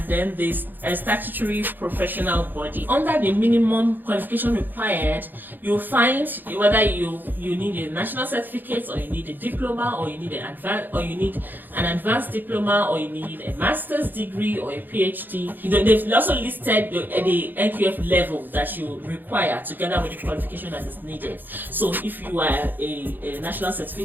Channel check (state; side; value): late; left; 0.089 ms